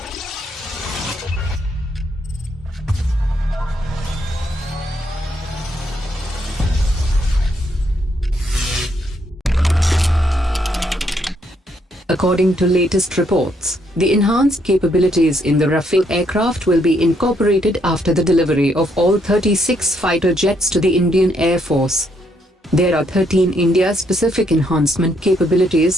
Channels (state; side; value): normal; both; correlation 0.73